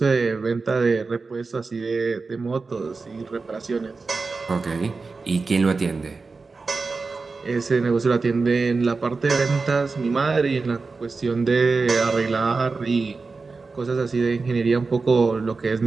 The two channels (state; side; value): quieter; left; 4.2 dB